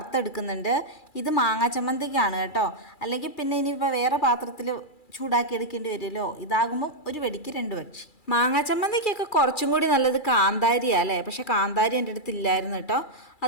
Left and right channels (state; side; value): late; right; 2.3 ms